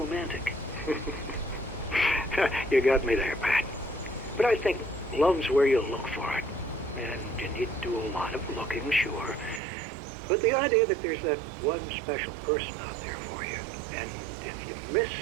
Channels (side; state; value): left; drops out; at 9.6 s